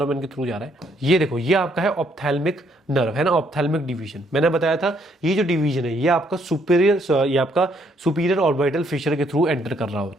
के थ्रू जा रहा है। ये देखो, ये आपका है ऑप्थेल्मिक नर्व, है ना, ऑप्थेल्मिक डिवीजन। मैंने बताया था ये जो डिवीजन है ये आपका ये आपका सुपीरियर ऑर्बिटल फिशर के थ्रू एंटर कर रहा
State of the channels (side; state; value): both; normal; correlation 0.70